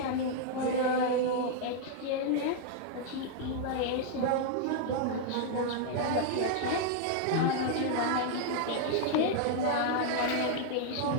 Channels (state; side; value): different; both; correlation 0.00